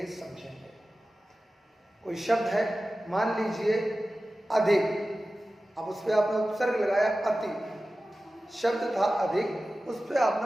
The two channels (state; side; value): normal; both; correlation 0.95